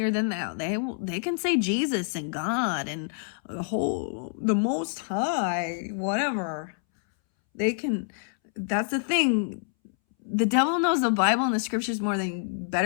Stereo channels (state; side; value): silent; right; 60 dB below the other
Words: than thou. They can say Jesus and God and the Most High, whatever. They can. That's the thing. The devil knows the Bible and the scriptures